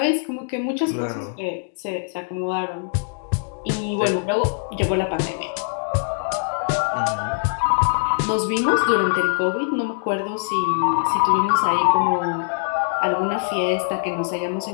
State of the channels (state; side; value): silent; right; digital silence